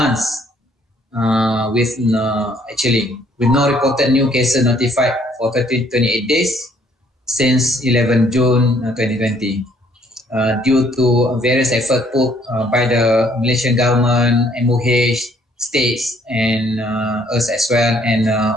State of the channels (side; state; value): both; normal; correlation 0.64